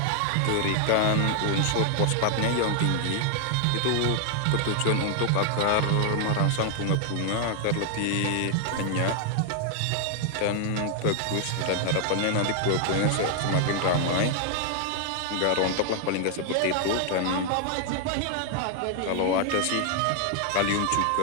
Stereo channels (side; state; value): both; different; correlation 0.00